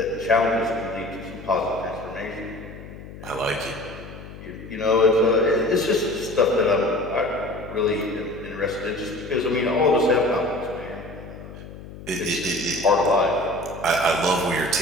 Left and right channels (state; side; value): noise; left; hum, 14 dB below the sound